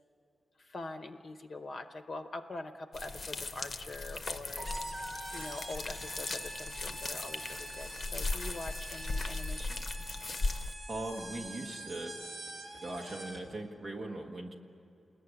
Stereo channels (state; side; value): normal; both; correlation 0.91